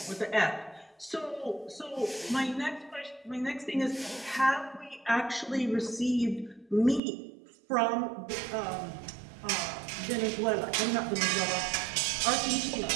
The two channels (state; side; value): drops out; left; at 7.0 s